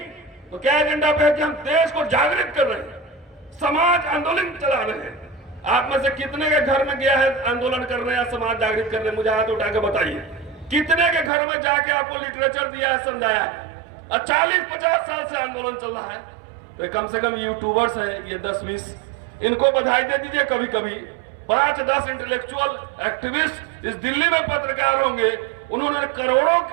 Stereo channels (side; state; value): left; drops out; at 11.3 s